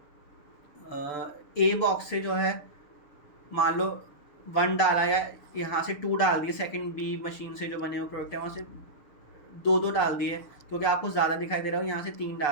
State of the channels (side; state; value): right; late; 6.8 ms